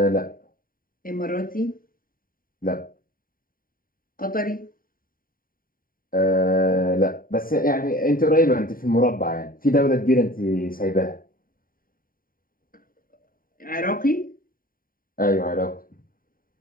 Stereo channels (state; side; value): late; right; 0.41 ms